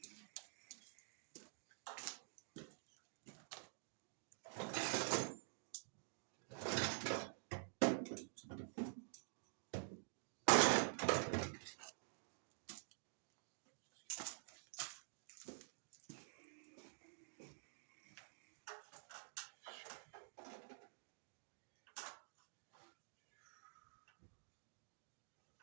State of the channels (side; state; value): left; silent; digital silence